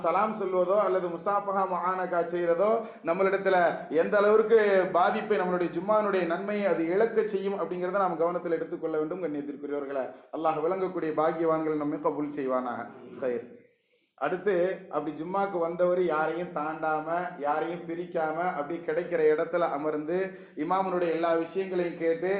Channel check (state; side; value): identical; both; correlation 1.00